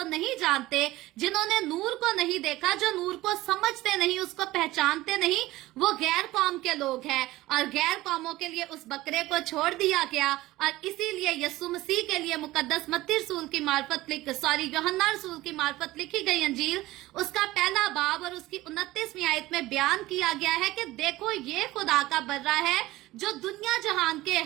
नहीं जानते, जिन्होंने नूर को नहीं देखा, जो नूर को समझते नहीं, उसको पहचानते नहीं, वो गैर कौम के लोग हैं। और गैर कौमों के लिए उस बकरे को छोड़ दिया गया। और इसीलिए यस्सु मसीह के लिए मुकद्दस मत्ती रसूल की मार्फत यूहन्ना रसूल की मार्फत लिखी गई अंजील, उसका पहला बाब और उसकी 29वीं आयत में बयान किया गया है कि देखो ये खुदा का बर्रा है जो दुनिया जहान के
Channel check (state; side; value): quieter; left; 17.7 dB